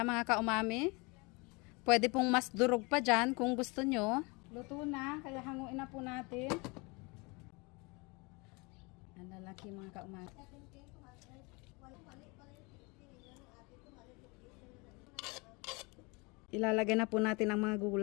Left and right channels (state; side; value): quieter; right; 27.9 dB